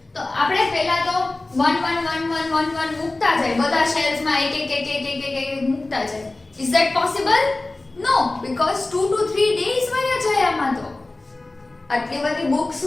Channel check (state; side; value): quieter; right; 3.0 dB